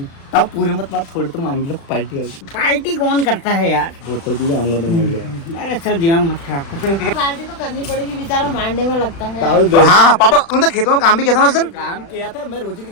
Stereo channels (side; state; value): right; late; 36 ms